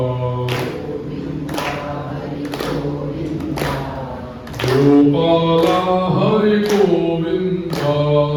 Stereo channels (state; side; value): identical; both; correlation 1.00